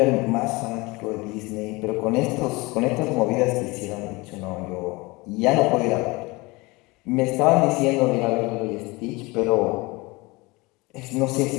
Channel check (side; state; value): right; quieter; 23.9 dB